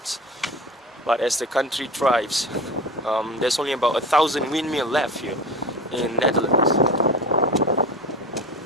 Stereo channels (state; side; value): normal; both; correlation 0.32